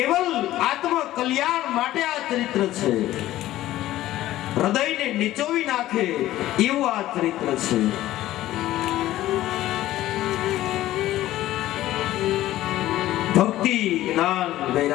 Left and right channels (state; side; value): quieter; right; 14.8 dB